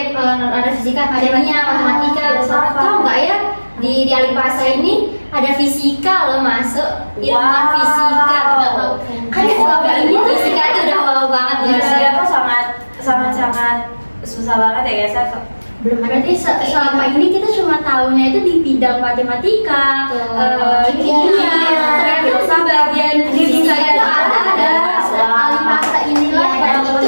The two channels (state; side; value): inverted; both; correlation -1.00